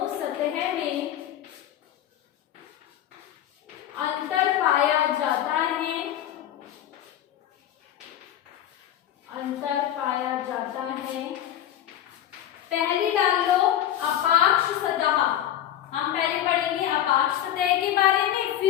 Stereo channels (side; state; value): right; quieter; 11.5 dB